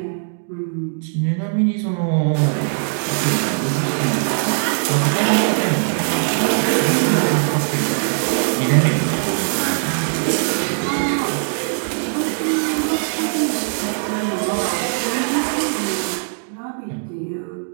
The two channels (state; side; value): silent; left; digital silence